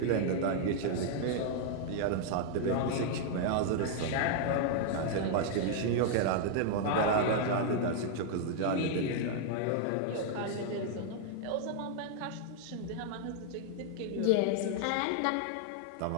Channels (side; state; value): both; different; correlation 0.00